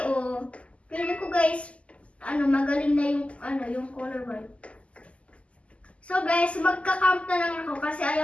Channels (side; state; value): right; late; 0.060 ms